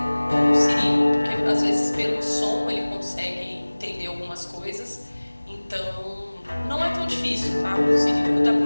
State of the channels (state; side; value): inverted; both; correlation -1.00